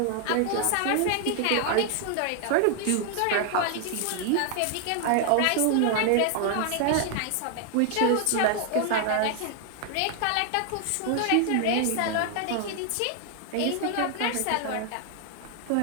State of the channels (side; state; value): both; different; correlation 0.00